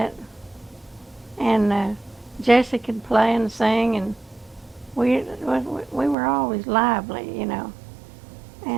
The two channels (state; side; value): drops out; left; at 6.2 s